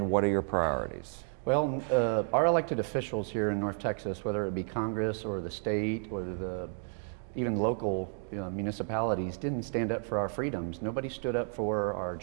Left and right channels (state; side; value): silent; left; 57 dB below the other